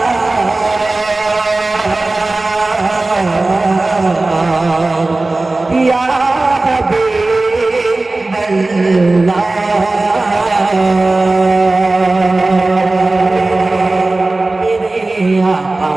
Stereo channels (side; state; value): left; quieter; 3.1 dB